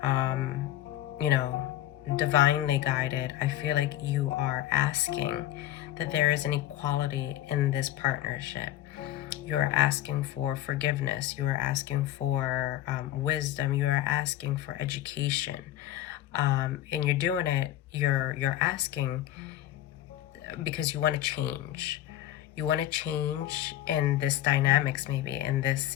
divinely guided, I feel like you are asking that there is an equality in this partnership. You're asking for forgiveness. You are asking for wisdom. You are asking for education, and you're doing it. You're asking because you want to change. You want to change in this dynamics, maybe in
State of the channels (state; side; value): quieter; right; 13.5 dB